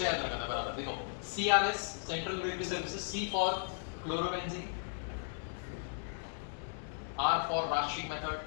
याद रखना बराबर, देखो CRS central regulatory services, C for chlorobenzene, R for Raschig method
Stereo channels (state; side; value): silent; right; digital silence